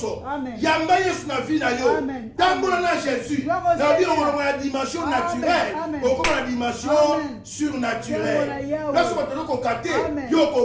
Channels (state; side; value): identical; both; correlation 1.00